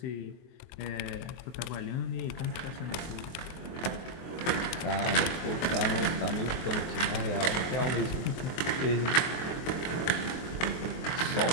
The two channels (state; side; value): late; right; 23 ms